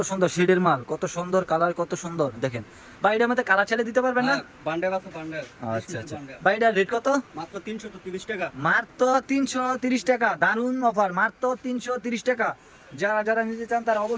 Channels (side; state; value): both; identical; correlation 1.00